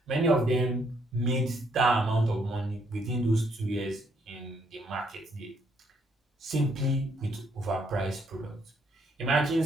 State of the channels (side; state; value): both; normal; correlation 0.71